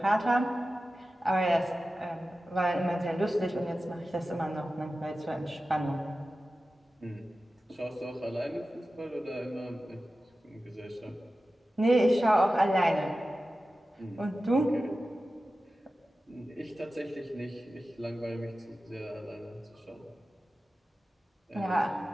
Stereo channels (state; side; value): normal; both; correlation 0.94